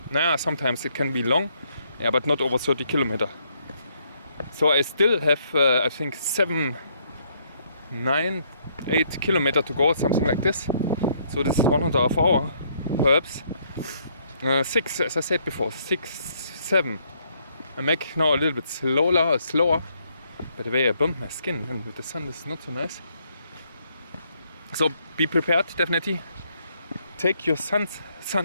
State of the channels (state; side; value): inverted; both; correlation -0.70